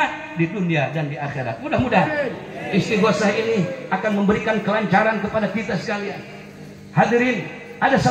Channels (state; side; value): identical; both; correlation 1.00